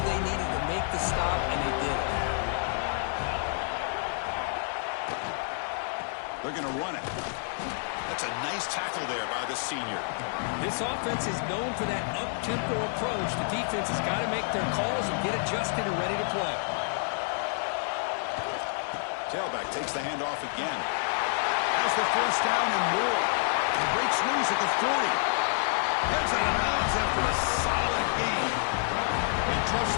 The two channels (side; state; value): right; silent; 59 dB below the other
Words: they needed to make the stop, and they did it. They're going to run it. That's a nice tackle there by the senior. This offense is known for that up-tempo approach. The defense has got to make their calls and get adjusted and ready to play. Tailback takes the handoff again. Has the 1st down and more. He breaks loose at the 40. Heads out of bounds after a solid gain. They trust